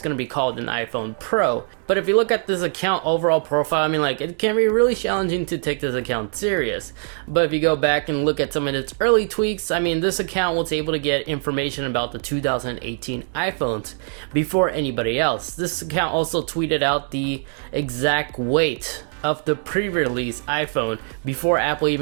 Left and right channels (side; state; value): left; silent; 56 dB below the other